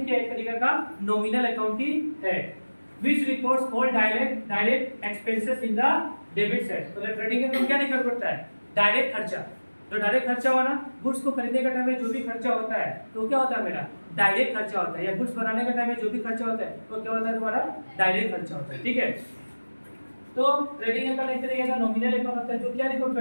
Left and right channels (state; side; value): inverted; both; correlation -1.00